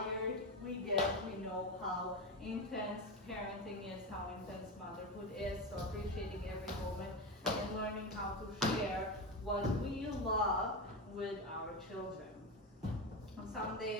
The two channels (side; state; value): both; normal; correlation 0.17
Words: we get, we know how intense parenting is, how intense motherhood is, so appreciating every moment and learning how to share what we love with our children. On some